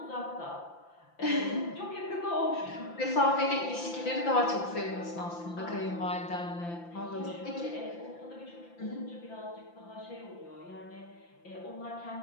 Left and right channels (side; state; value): right; late; 5.8 ms